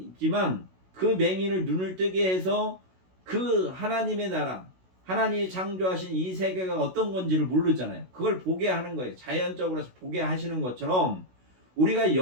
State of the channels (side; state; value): left; late; 16 ms